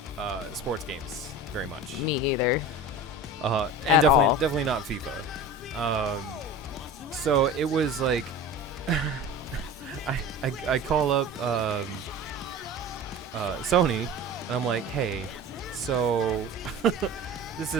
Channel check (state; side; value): normal; both; correlation 0.34